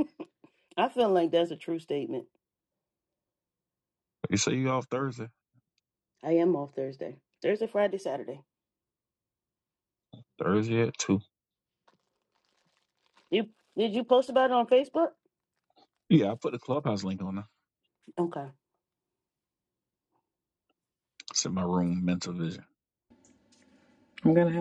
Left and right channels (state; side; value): identical; both; correlation 1.00